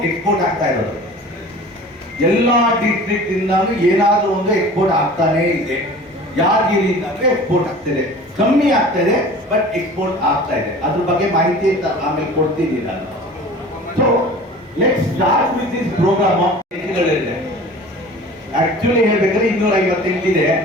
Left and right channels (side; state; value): both; normal; correlation 0.42